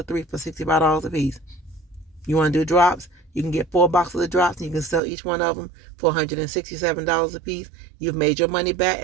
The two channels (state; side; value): drops out; left; at 5.0 s